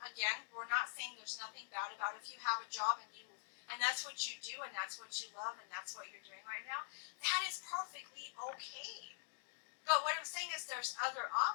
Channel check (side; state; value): right; silent; digital silence